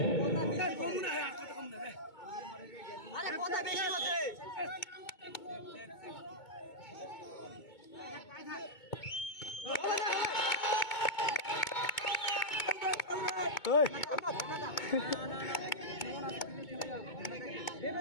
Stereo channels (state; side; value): late; right; 2.2 ms